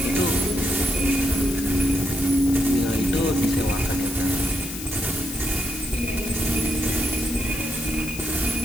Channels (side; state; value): left; noise; hiss, 10 dB below the sound